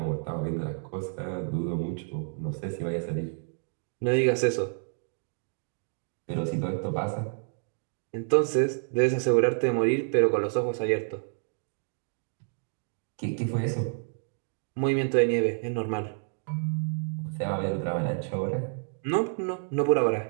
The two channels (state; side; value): silent; left; digital silence